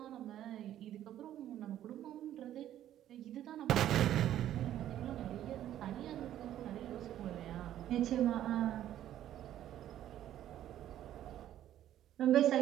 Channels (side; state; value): left; quieter; 11.9 dB